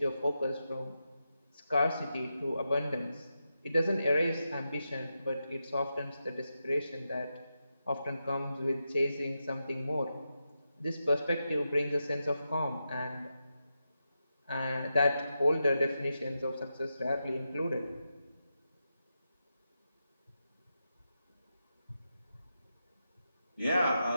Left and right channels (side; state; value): both; inverted; correlation -0.88